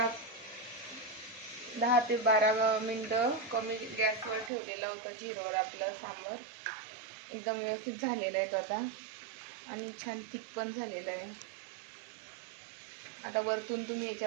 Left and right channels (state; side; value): drops out; left; at 4.5 s